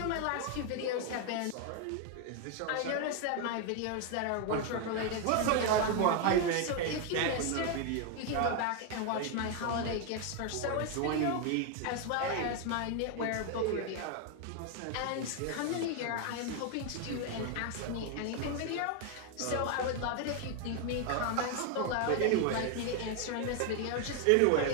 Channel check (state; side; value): different; both; correlation 0.01